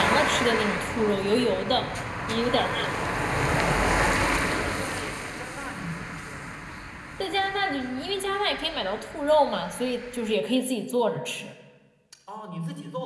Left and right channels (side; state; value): both; identical; correlation 1.00